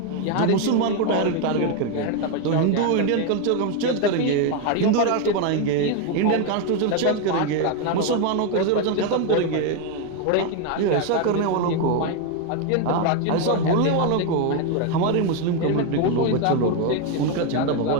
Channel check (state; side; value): different; both; correlation 0.01